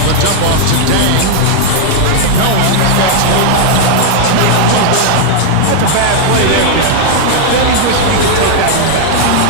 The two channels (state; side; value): different; both; correlation 0.00